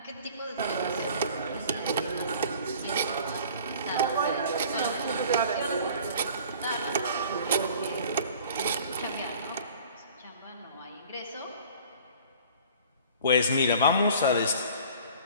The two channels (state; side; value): inverted; both; correlation -0.48